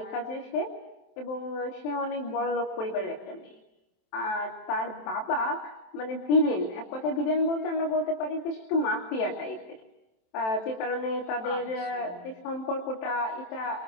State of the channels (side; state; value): right; late; 27 ms